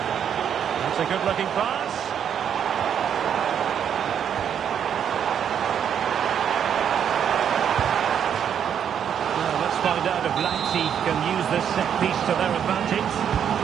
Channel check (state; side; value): quieter; left; 8.6 dB